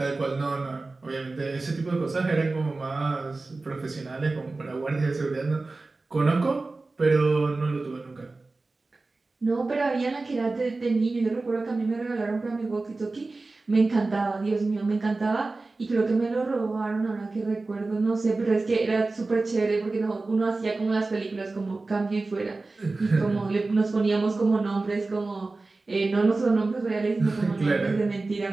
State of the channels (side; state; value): left; quieter; 3.4 dB